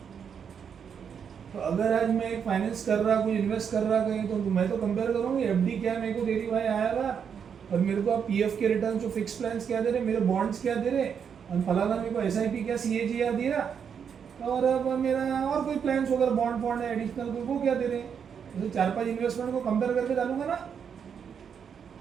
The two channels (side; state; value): left; quieter; 7.3 dB